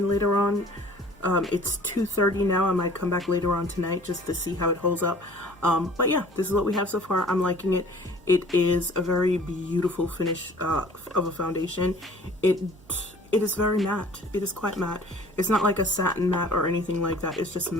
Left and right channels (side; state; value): both; normal; correlation 0.50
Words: later on. It's 2:30 now. I might come back later on tonight just to see how it holds up. But yeah, this is what we have so far. I'm liking it. It is a very beautiful finish of a foundation. It is very matte. It is quite matte. It's not like a satin matte or anything like that. It's just